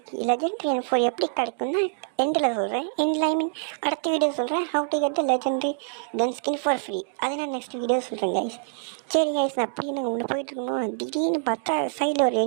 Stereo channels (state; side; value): silent; left; digital silence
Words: லெஜெண்ட்ரி M4 எப்படி கிடைக்கும்னா எண்டில் சொல்கிறேன். ஐ மீன் அடுத்த வீடியோ சொல்கிறேன். How to get the legendary gun skin for free. அது நான் நெக்ஸ்ட் வீடியோ சொல்கிறேன் கைஸ். சரி கைஸ், நான் அப்படி நான் உள்ள போயிட்டுருக்கணும். திடீர்னு பார்த்தா சைடில் ஒரு